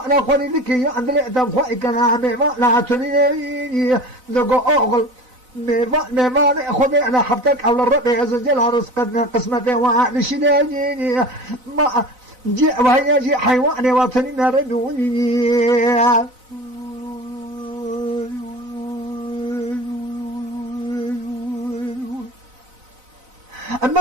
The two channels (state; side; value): late; left; 4.0 ms